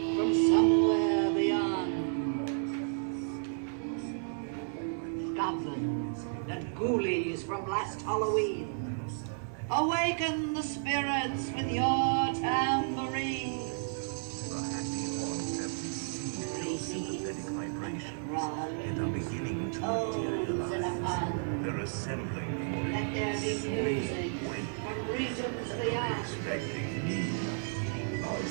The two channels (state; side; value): silent; left; digital silence